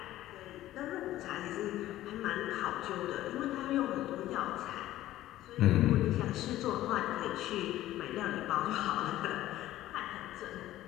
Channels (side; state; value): right; quieter; 14.5 dB